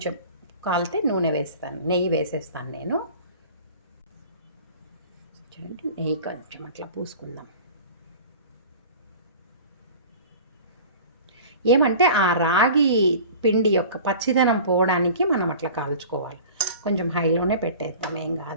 కాలితే నూనె వేస్తాను, నెయ్యి వేసేస్తాను నేను. చూడండి, నెయ్యి కొంచెం అట్లా పూసుకుందాం. ఏమంటే ఆ రాగి పిండి యొక్క పచ్చిదనం పోవడానికి మనం అట్లా కాల్చుకోవాలి. కొంచెం హైలోనే పెట్టేద్దాం, ఏం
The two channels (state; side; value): inverted; both; correlation -0.41